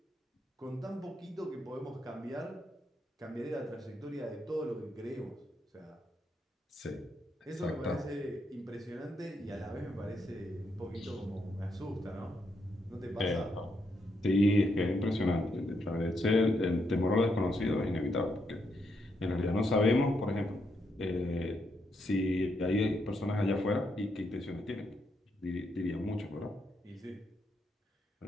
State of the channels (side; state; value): both; normal; correlation 0.79